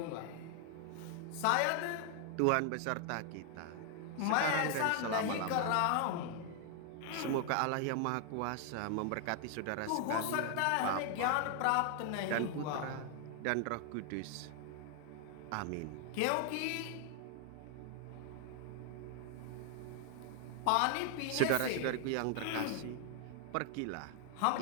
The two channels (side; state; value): both; different; correlation 0.00